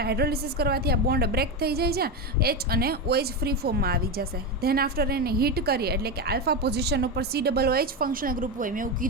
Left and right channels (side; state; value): both; normal; correlation 0.13